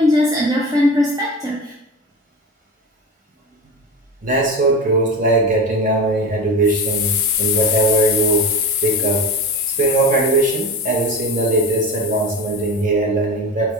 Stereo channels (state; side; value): normal; both; correlation 0.27